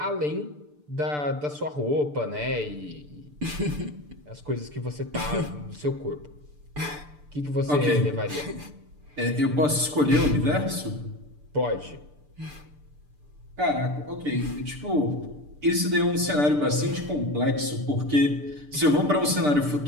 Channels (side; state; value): left; late; 6.8 ms